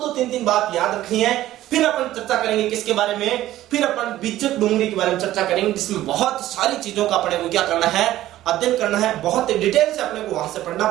तीन बात याद रखनी है। फिर अपन चर्चा करेंगे किसके बारे में, फिर अपन बिज्जट डोंगरी के बारे में चर्चा करेंगे, जिसमें बहुत सारी चीजों का अपने को क्या करना है, अध्ययन करना है, बहुत डिटेल से अपने को वहां से पढ़ना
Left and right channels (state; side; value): quieter; left; 14.3 dB